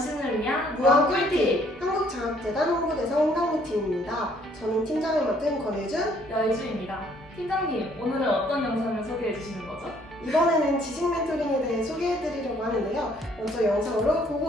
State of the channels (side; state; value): both; normal; correlation 0.63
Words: 위한 무한 꿀팁! 한국장학재단 홍보대사 홍당무팀입니다. 저는 팀장을 맡은 권혜준, 여희주입니다. 팀장님, 오늘은 어떤 영상을 소개해 주시는 거죠? 이번에는 지식 멘토링에 대해 소개해드리려고 하는데요. 먼저 영상으로